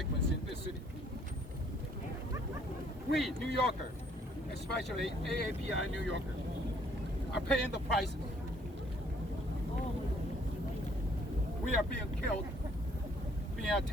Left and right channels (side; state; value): both; normal; correlation 0.63